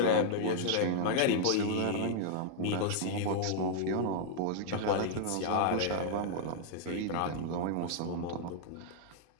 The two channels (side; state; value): both; different; correlation -0.01